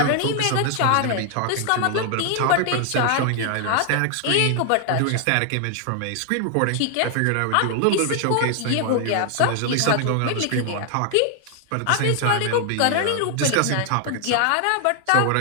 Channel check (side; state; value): both; different; correlation 0.00